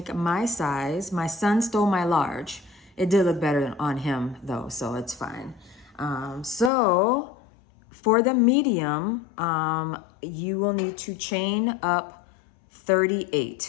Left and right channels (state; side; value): drops out; right; at 6.7 s